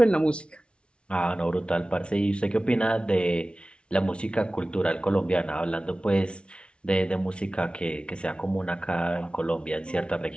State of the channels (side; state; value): right; late; 0.058 ms